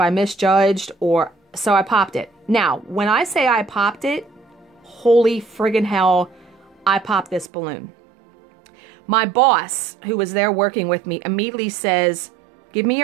misjudged or... So I popped it. Now, when I say I popped it, holy friggin' hell, I popped this balloon. My boss, who was there working with me, immediately says, give me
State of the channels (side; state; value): left; drops out; at 7.5 s